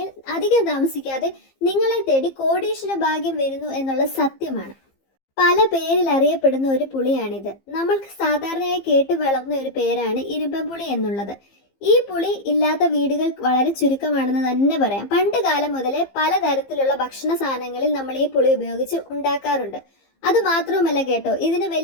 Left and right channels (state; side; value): late; right; 15 ms